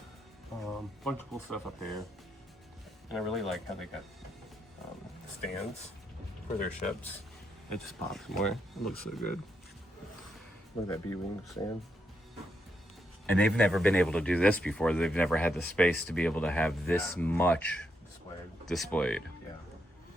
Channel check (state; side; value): normal; both; correlation 0.81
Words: Bunch of cool stuff up there. And I really like how they got stands for their ships. It just pops more. It looks so good. Look at that B-wing stand. And they've never been able to do this before. They've never had the space to be able to have this much displayed. Yeah.